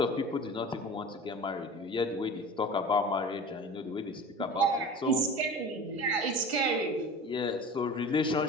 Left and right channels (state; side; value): normal; both; correlation 0.36